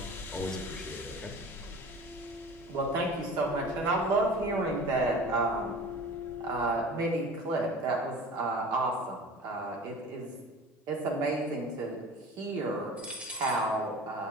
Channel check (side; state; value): both; normal; correlation 0.39